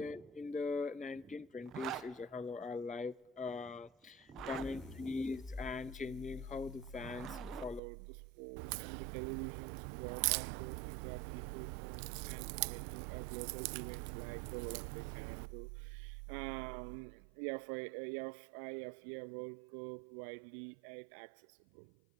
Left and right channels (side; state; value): left; drops out; at 7.8 s